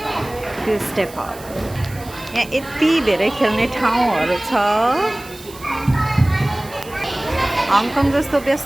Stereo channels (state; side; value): noise; right; hiss, 19 dB below the sound